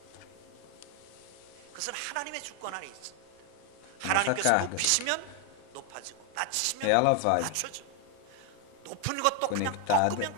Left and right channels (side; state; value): both; different; correlation 0.01